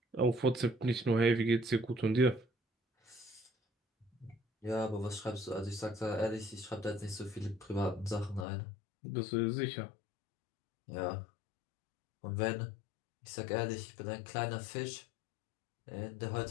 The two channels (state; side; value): drops out; right; at 8.5 s